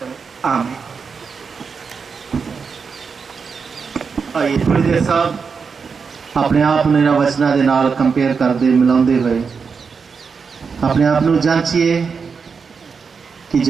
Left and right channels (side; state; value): left; quieter; 5.5 dB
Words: आमीन। आइए थोड़ी देर साहब अपने आप ਨੂੰ ਇਹਨਾਂ ਵਚਨਾਂ ਦੇ ਨਾਲ ਕੰਪੇਅਰ ਕਰਦੇ ਮਿਲਾਉਂਦੇ ਹੋਏ ਆਪਣੇ ਆਪ ਨੂੰ ਜਾਂਚੀਏ ਕਿ